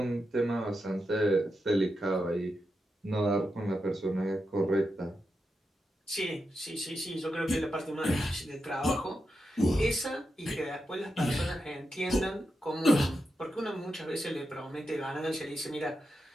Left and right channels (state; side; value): normal; both; correlation 0.87